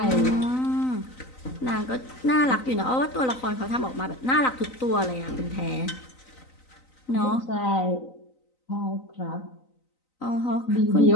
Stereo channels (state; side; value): late; right; 3.9 ms